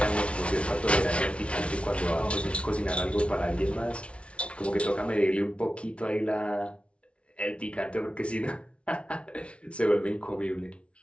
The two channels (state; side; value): late; right; 0.060 ms